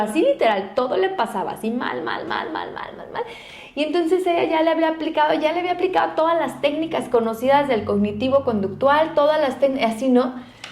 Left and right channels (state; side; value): identical; both; correlation 1.00